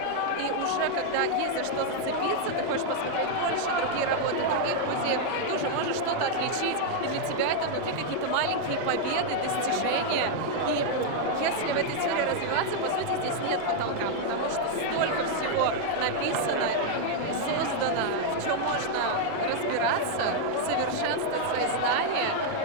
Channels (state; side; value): different; both; correlation 0.00